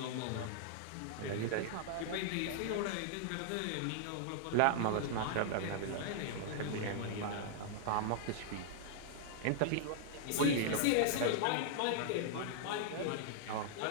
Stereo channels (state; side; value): different; both; correlation -0.01